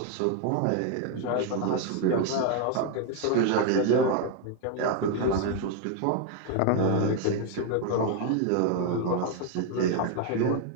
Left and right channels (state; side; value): different; both; correlation 0.01